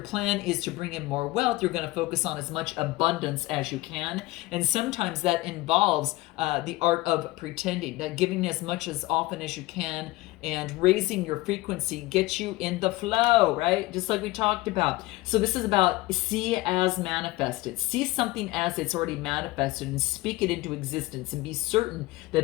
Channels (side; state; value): right; quieter; 19.9 dB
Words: plan is to bring in more wealth, you're going to focus on as much abundance as you can. And sometimes that involves the art of pretending, that giving as much as often as you can and raising your frequency gets you in the flow, right? Just like we talked about. So this is about see as manifested. See something as it's already manifested and speak it into existence and be certain